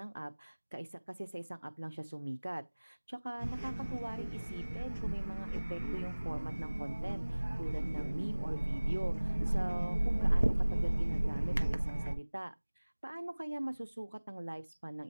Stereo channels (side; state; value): both; inverted; correlation -1.00